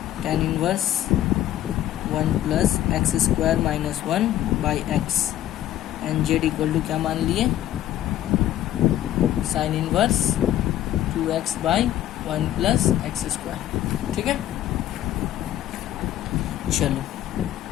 tan inverse 1 plus x square minus 1 by x, and z equal to क्या मान लिए sine inverse 2x by 1 plus x square, ठीक है। चलो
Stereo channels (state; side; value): quieter; right; 12.7 dB